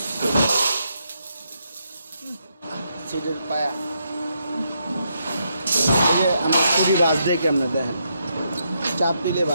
সিটের পায়া এই যে আমরা খুঁটি বাজ দিয়ে কেমনে দেখেন, চাপ দিলে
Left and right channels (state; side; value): inverted; both; correlation -0.79